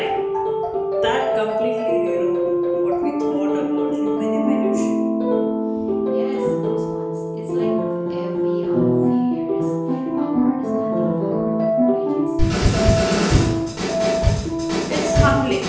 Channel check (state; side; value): identical; both; correlation 1.00